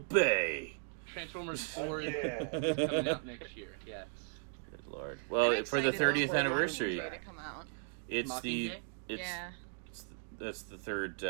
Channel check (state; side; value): silent; left; 53 dB below the other